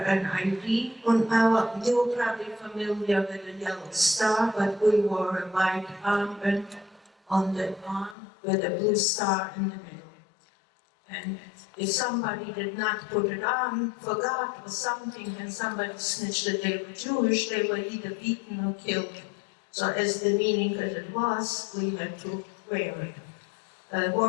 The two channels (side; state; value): right; drops out; at 8.2 s